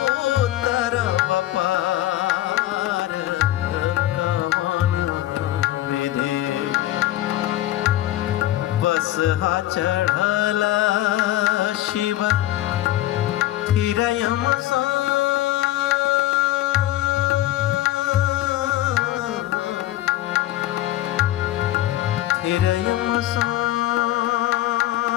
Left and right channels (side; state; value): right; quieter; 14.8 dB